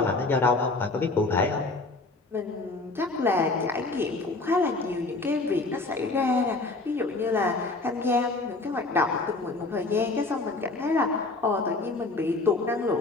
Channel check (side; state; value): right; quieter; 3.3 dB